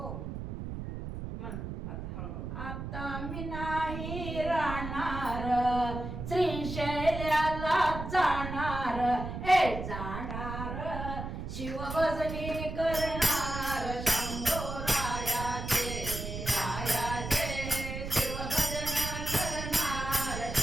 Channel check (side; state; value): right; noise; rumble, 6 dB below the sound